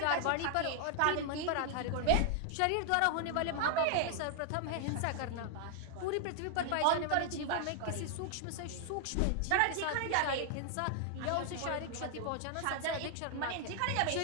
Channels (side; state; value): both; different; correlation 0.00